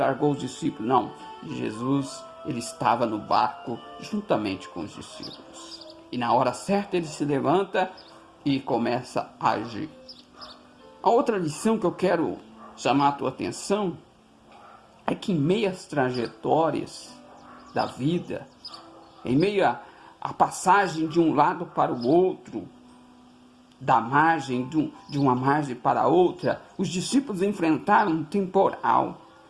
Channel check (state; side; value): identical; both; correlation 1.00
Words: os discípulos. Não, Jesus ele estava no barco juntamente com os discípulos. E na hora certa ele se levanta e começa a agir. A outra lição que eu quero chamar a tua atenção é que em meio às trajetórias da vida, em meio à passagem de um lado para o outro, da margem, de uma margem para outra, os discípulos enfrentaram um temporal.